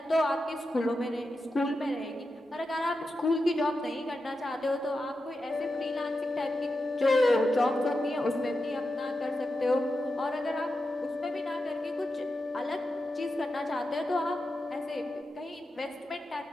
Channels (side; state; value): both; normal; correlation 0.89